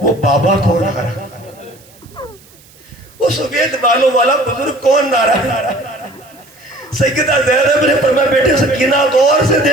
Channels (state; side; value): noise; right; hiss, 27 dB below the sound